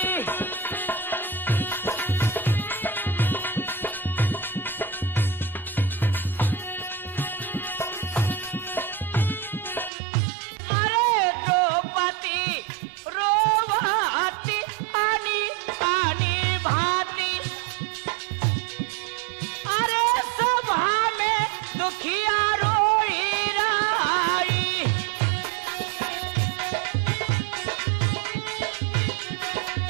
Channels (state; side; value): drops out; left; at 9.9 s